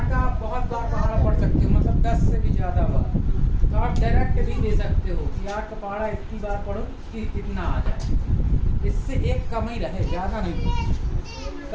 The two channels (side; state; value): both; identical; correlation 1.00